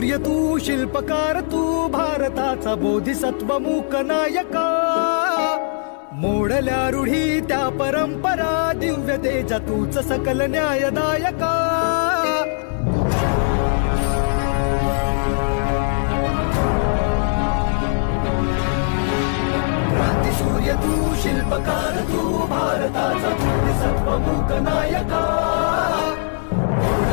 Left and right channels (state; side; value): silent; right; digital silence